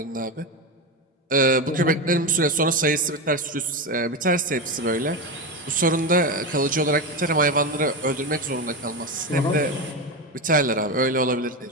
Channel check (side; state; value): both; normal; correlation 0.17